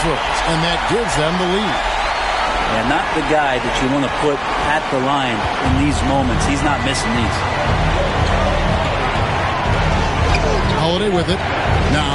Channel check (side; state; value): both; identical; correlation 1.00